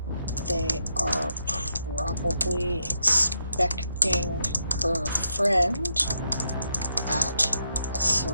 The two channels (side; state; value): both; inverted; correlation -0.80